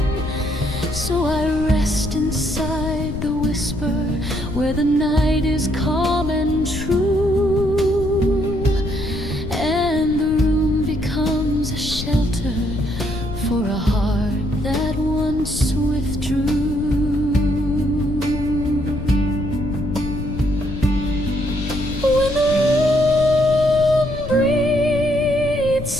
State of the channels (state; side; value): noise; left; rumble, 7 dB below the sound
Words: So I rest inside the whisper where the night is calm and true, and the room becomes a shelter for a heart that once withdrew. When the room breathes